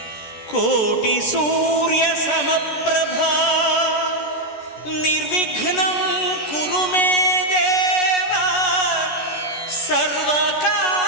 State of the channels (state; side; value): late; right; 14 ms